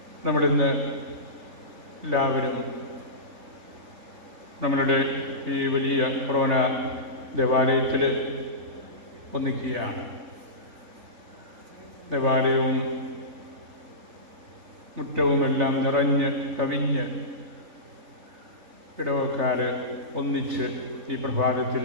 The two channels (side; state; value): left; late; 3.5 ms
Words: നമ്മളിന്ന് എല്ലാവരും നമ്മളുടെ ഈ വലിയ കൊറോണ ദേവാലയത്തിൽ ഒന്നിക്കുകയാണ്. ദേവാലയവും മുറ്റവുമെല്ലാം നിറഞ്ഞ് കവിഞ്ഞ് ഇടവക്കാർ ഒന്നിച്ച് ഈ പ്രഭാതത്തിൽ